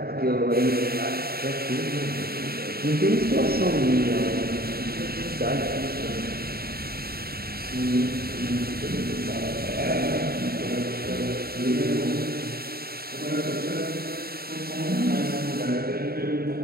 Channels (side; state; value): left; late; 0.45 ms